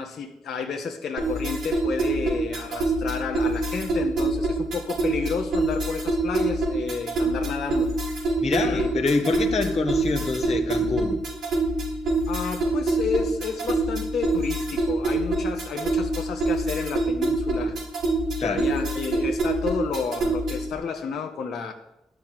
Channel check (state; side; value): normal; both; correlation 0.74